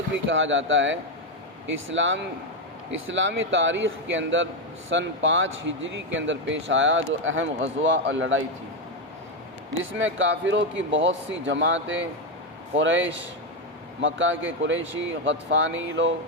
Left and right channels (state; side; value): normal; both; correlation 0.06